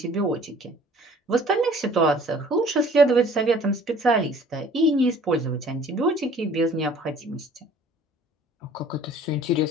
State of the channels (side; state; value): both; normal; correlation 0.52